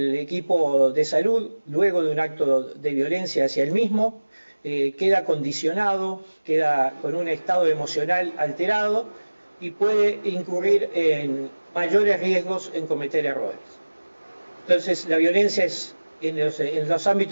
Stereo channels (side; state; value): both; inverted; correlation -1.00